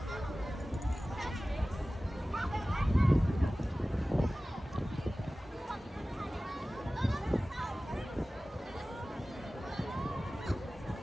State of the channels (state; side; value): normal; both; correlation 0.97